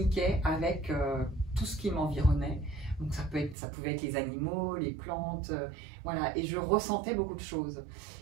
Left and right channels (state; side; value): drops out; left; at 3.6 s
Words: avec tout ce qui m'environnait. Donc ça pouvait être les animaux, les plantes, voilà, et je ressentais beaucoup de choses.